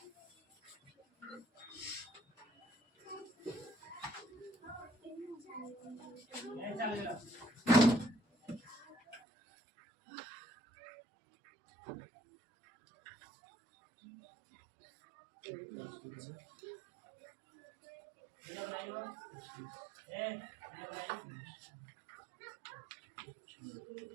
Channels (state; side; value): drops out; left; at 9.2 s